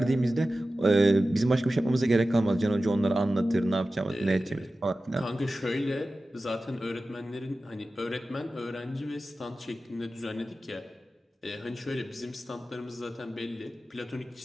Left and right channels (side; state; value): both; normal; correlation 0.95